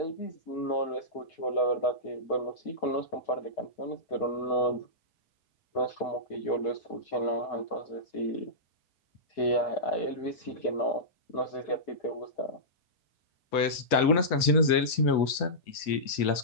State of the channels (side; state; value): right; late; 5.3 ms